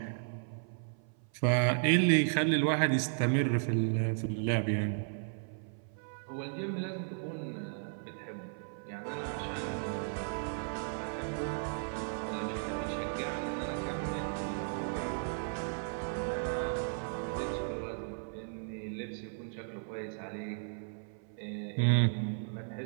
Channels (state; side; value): silent; left; 54 dB below the other